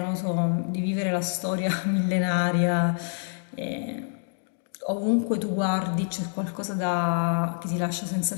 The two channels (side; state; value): right; silent; digital silence